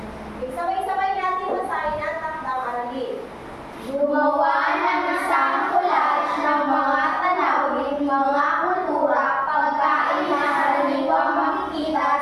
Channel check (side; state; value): both; identical; correlation 1.00